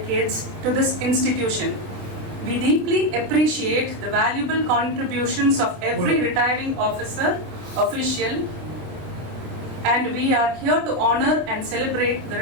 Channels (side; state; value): left; late; 27 ms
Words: to this institution. We deeply appreciate the valuable contributions of every retiring officer, official, and we are here to honor and celebrate the